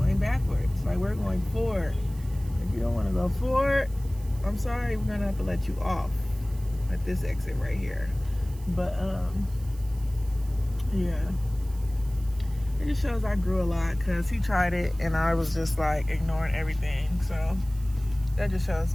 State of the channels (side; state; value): right; noise; hiss, 23 dB below the sound